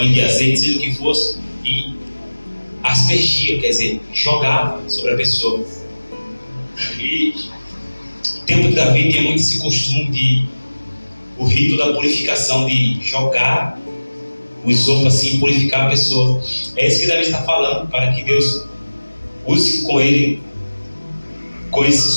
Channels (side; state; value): both; inverted; correlation -1.00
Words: de azeite, seja o que fosse, e aspergia, quer dizer, jogava sobre a pessoa. E no tempo de Davi tinha muito esse costume o rito da purificação, de jogar o isopo assim, purificar a pessoa. É isso que Davi está falando, para que Deus use com ele, com esse